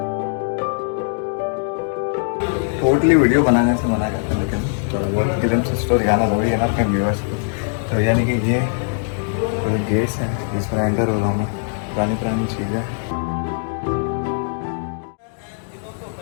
टोटली वीडियो बनाने से मना करते हैं, लेकिन थोड़ा बहुत फिल्म से स्टोरी दिखाना ज़रूरी है ना अपने व्यूअर्स को। तो यानी कि ये पूरे गेट्स हैं जिसमें एंटर हो रहा हूँ मैं। पुरानी पुरानी चीज़ें।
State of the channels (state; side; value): silent; right; digital silence